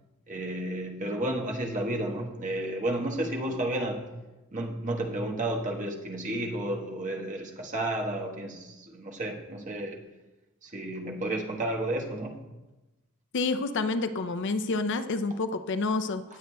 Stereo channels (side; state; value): both; normal; correlation 0.41